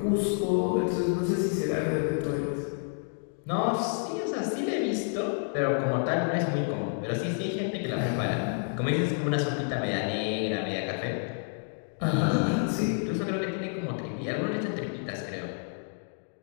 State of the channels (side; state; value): right; silent; 58 dB below the other